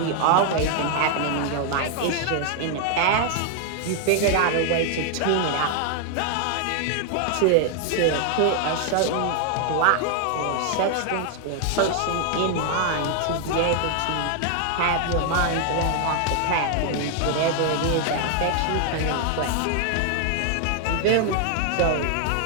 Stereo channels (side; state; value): both; different; correlation 0.00